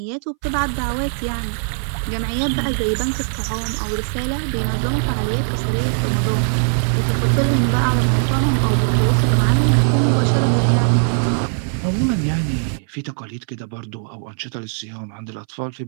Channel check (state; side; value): silent; left; 62 dB below the other